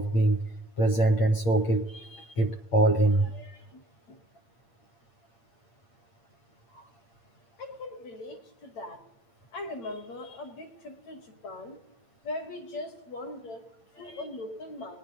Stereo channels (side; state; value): right; late; 8.7 ms